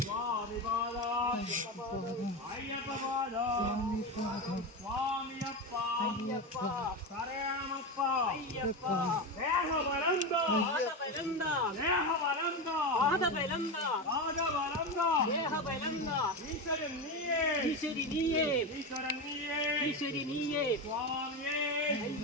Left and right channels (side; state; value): both; normal; correlation 0.17